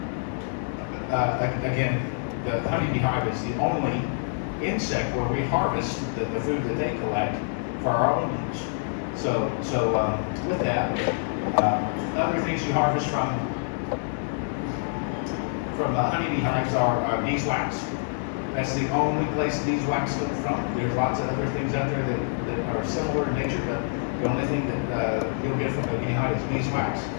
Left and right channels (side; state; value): right; silent; 61 dB below the other